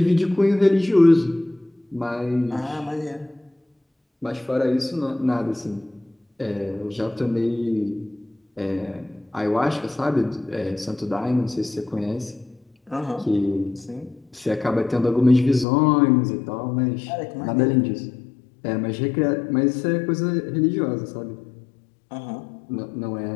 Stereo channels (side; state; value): right; drops out; at 15.7 s